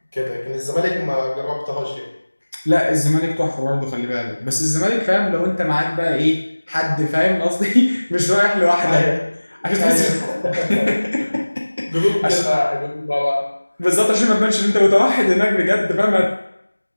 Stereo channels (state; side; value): inverted; both; correlation -1.00